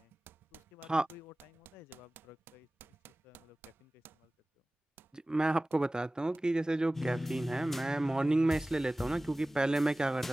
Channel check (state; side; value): normal; both; correlation 0.98